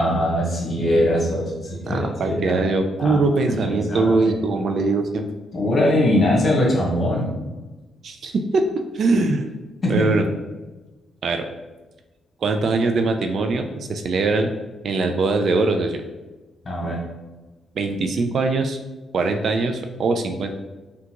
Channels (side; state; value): both; normal; correlation 0.75